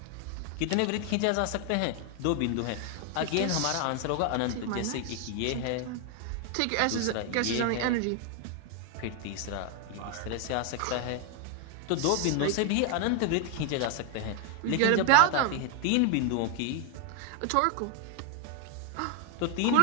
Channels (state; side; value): different; both; correlation 0.01